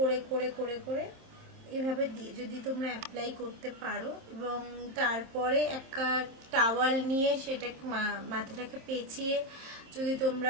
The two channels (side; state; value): left; late; 26 ms